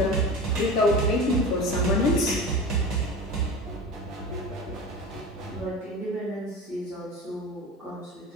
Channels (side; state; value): both; normal; correlation 0.31